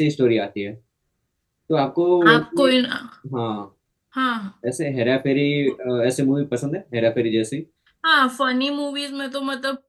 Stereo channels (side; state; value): both; identical; correlation 1.00